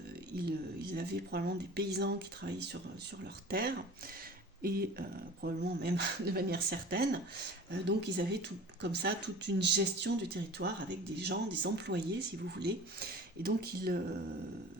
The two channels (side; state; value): both; normal; correlation 0.40